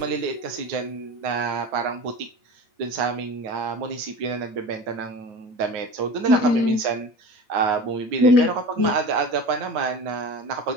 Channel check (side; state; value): left; late; 8.9 ms